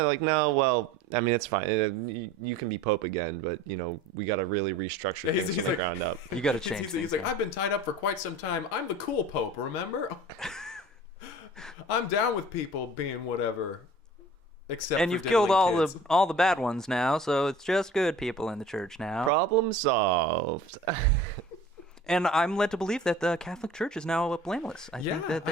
Like, no, well, I mean, it's fine. You can be Pope again, but, you know, we got to really restructure things from the ground up. You got to change things. He's like, I've been tied up for quite some time. I'm the cool Pope, remember? I'm down with people being whatever. Except and you've killed all the bad ones now, so it's just good people in the church now. Problem solved. And I'm led to believe that the Catholic Church is now blameless. I think that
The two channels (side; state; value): both; normal; correlation 0.43